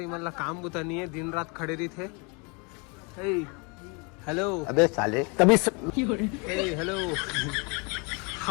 मतलब काम बुता नहीं है, दिन रात खड़े रही थे। हेलो अबे साले तभी हेलो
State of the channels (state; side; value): quieter; right; 32.1 dB